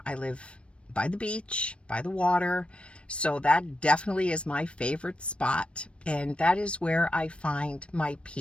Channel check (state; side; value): late; right; 0.059 ms